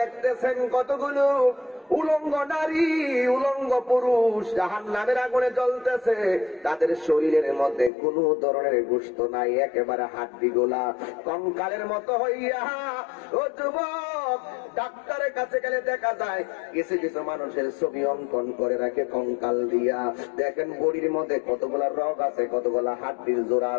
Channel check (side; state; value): right; drops out; at 7.9 s